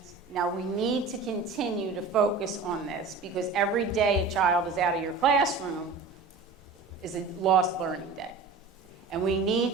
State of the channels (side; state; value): left; quieter; 4.2 dB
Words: Now, we need to continue to focus on this because every day a child is out of your classroom is a lost learning day. And we